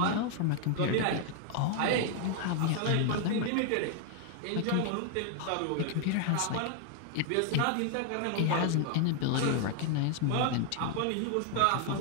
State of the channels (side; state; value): both; different; correlation 0.00